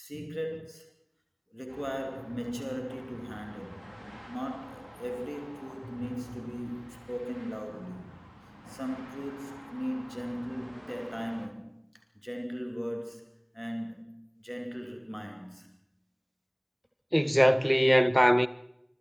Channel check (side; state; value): both; identical; correlation 1.00